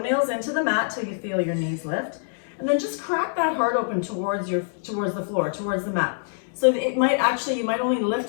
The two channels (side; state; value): right; silent; digital silence